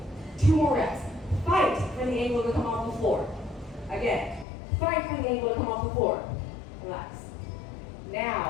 2 more reps. Fight for the ankle to come off the floor. Again, fight for the ankle to come off the floor. Relax.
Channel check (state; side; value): drops out; right; at 4.5 s